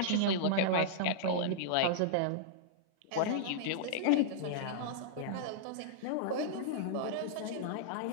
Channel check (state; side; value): different; both; correlation -0.02